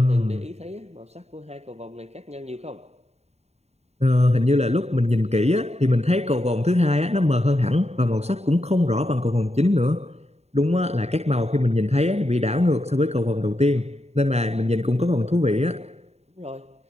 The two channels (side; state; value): left; late; 0.31 ms